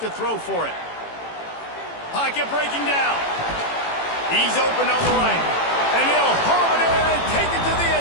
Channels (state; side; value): late; right; 18 ms